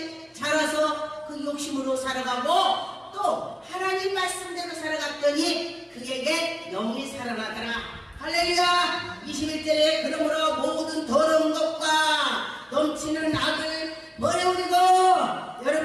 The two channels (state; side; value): identical; both; correlation 1.00